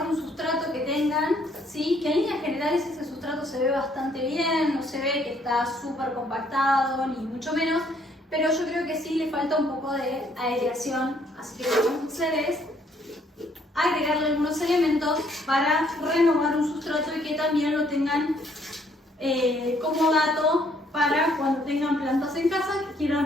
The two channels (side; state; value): both; normal; correlation 0.66